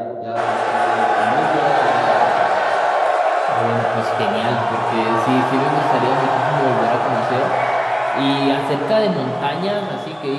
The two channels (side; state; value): both; identical; correlation 1.00